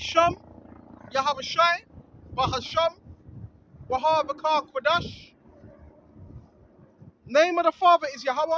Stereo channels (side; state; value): both; identical; correlation 1.00